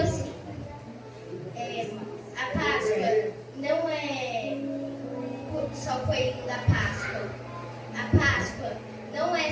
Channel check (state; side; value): identical; both; correlation 1.00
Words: a Páscoa não é só o coelho da Páscoa. A Páscoa não é